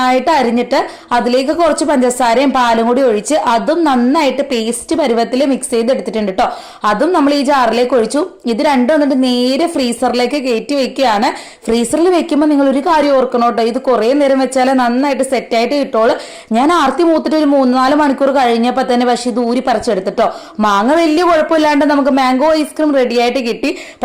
അരിഞ്ഞിട്ട് അതിലേക്ക് കുറച്ച് പഞ്ചസാരയും പാലും കൂടി ഒഴിച്ച് അതും നന്നായിട്ട് പേസ്റ്റ് പരുവത്തിൽ മിക്സ് ചെയ്ത് എടുത്തിട്ടുണ്ട് കേട്ടോ. അതും നമ്മൾ ഈ ജാറിലേക്ക് ഒഴിച്ചു. ഇത് രണ്ടും വന്നിട്ട് നേരെ ഫ്രീസറിലേക്ക് കയറ്റി വെക്കുകയാണ്. ഫ്രീസറിൽ വെക്കുമ്പോൾ നിങ്ങൾ ഒരു കാര്യം ഓർക്കണം കേട്ടോ, ഇത് കുറെ നേരം വെച്ചാൽ നന്നായിട്ട് സെറ്റ് ആയിട്ട് കിട്ടുള്ളൂ. ഞാൻ ആർത്തി മൂത്തിട്ട് ഒരു 3-4 മണിക്കൂർ കഴിഞ്ഞപ്പോൾ തന്നെ പക്ഷെ ഇത് ഊരി പറിച്ചെടുത്തിട്ടോ. മാങ്ങ വലിയ കുഴപ്പമില്ലാണ്ട് നമുക്ക് മാംഗോ ഐസ്ക്രീം റെഡി ആയിട്ട് കിട്ടി.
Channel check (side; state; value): both; identical; correlation 1.00